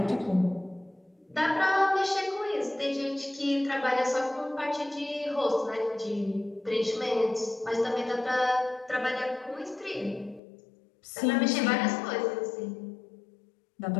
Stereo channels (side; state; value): right; drops out; at 10.4 s